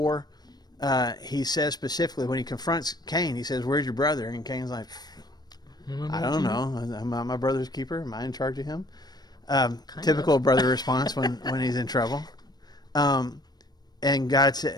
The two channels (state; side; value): late; right; 0.19 ms